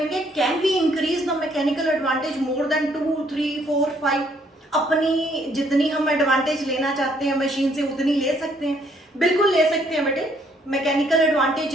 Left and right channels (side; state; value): both; normal; correlation 0.67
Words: can we increase the mechanical advantage more than 2, 3, 4, 5। अपनी जितनी हम एडवांटेज लेना चाहते हैं मशीन से उतनी ले सकते हैं, बिल्कुल ले सकते हैं बेटे। मैकेनिकल